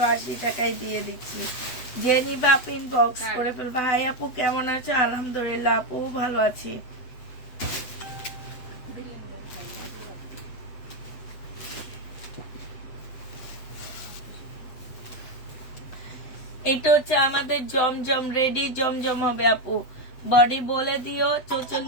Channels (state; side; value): late; right; 8.2 ms